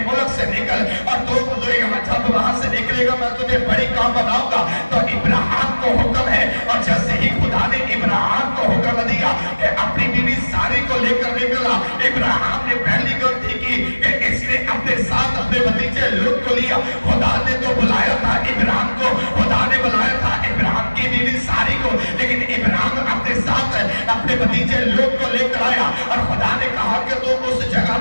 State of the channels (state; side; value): inverted; both; correlation -1.00